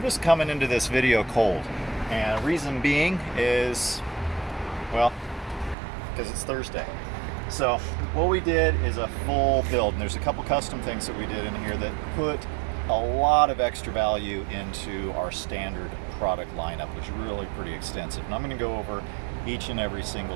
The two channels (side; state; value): left; drops out; at 5.8 s